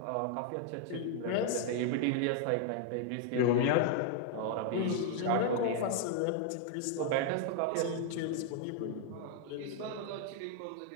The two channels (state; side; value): different; both; correlation 0.00